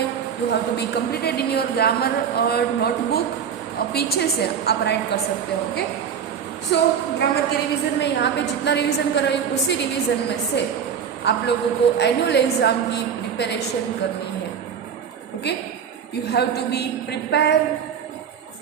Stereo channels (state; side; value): quieter; left; 7.6 dB